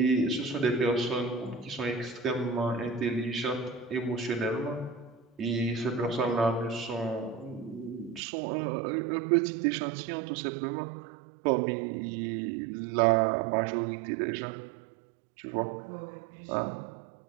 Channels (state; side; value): drops out; left; at 8.2 s